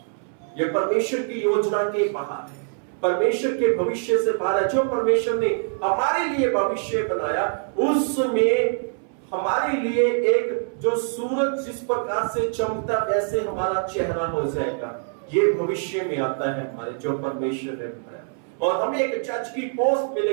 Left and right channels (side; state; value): left; silent; 61 dB below the other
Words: यह परमेश्वर की योजना के बाहर है, परमेश्वर के भविष्य से बाहर है। जो परमेश्वर ने हमारे लिए भविष्य बनाया, उसमें हमारे लिए एक जो सूरज जिस प्रकार से चमकता वैसे हमारा चेहरा हो जाएगा, ये भविष्य में आता है हमारे, जो परमेश्वर ने बनाया। और हमें एक जज की पोस्ट